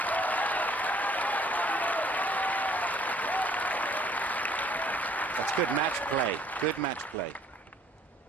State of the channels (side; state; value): both; normal; correlation 0.60